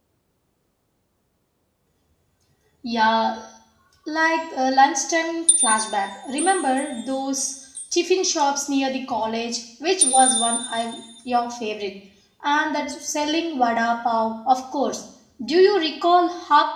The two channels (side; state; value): both; identical; correlation 1.00